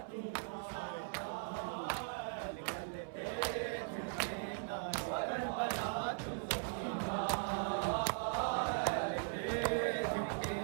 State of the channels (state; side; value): silent; left; 51 dB below the other